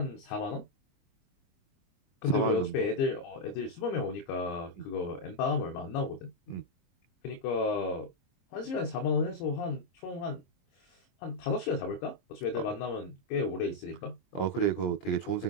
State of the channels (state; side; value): late; right; 23 ms